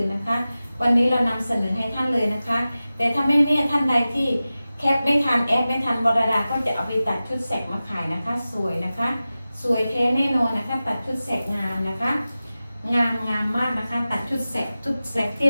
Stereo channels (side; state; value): both; inverted; correlation -0.95